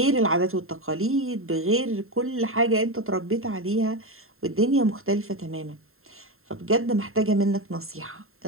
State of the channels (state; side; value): late; left; 0.61 ms